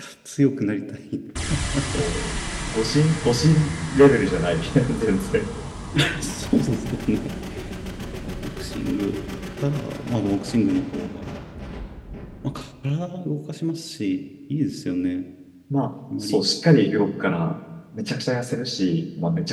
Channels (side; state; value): both; identical; correlation 1.00